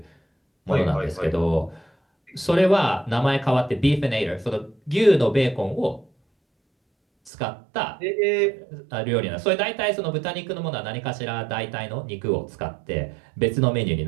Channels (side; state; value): left; drops out; at 7.3 s